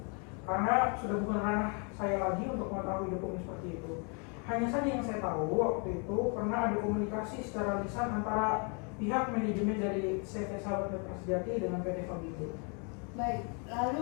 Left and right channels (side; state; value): right; quieter; 36.5 dB